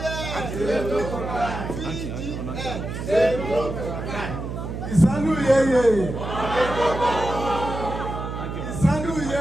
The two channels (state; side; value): noise; right; hum, 6 dB below the sound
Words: Ìsánú yeye ìsánú